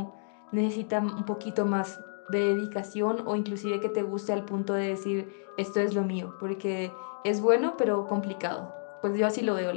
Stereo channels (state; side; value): silent; right; digital silence